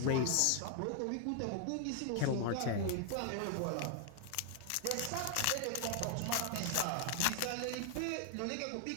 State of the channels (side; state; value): both; different; correlation 0.00